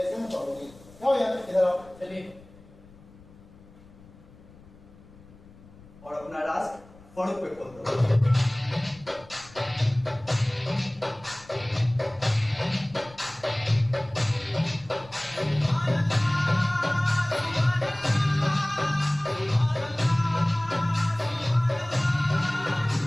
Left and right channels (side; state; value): left; noise; rumble, 23 dB below the sound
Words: में पकड़ोगे, क्या हो जाता? इधर आओ। चलिए। और अपना राज फड़क पे खोल दो।